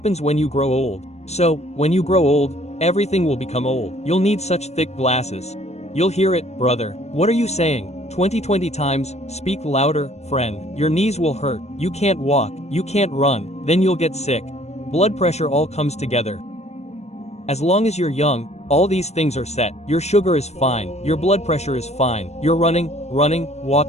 when you grow old. So, when you grow old, everything will become old. You'll need such thick glasses. You'll hear it, brother. What are you saying? 20 times, speak louder, friend. Your knees will hurt, you can't walk, you can't run, then you'll get sick. Blood pressure all comes together. As long as you're young, all these things are set. Your sugar is fine, your blood pressure is fine. You're running,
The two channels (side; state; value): right; late; 0.32 ms